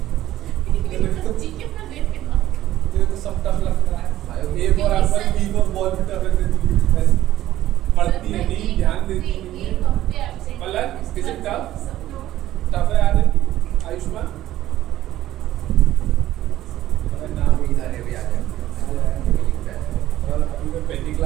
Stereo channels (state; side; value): quieter; left; 13.9 dB